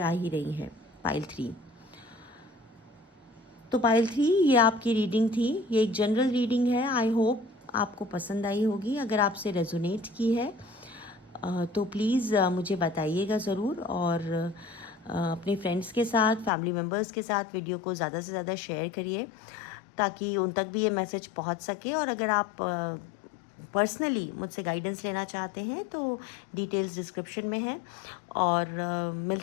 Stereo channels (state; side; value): drops out; right; at 16.5 s